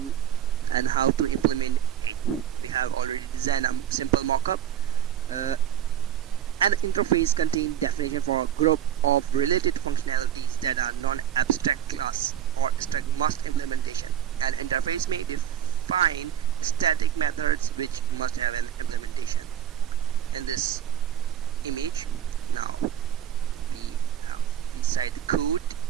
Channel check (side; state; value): left; quieter; 9.8 dB